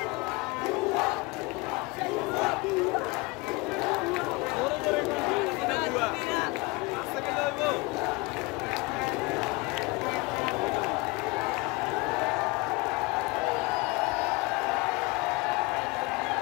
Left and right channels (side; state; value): right; quieter; 25.1 dB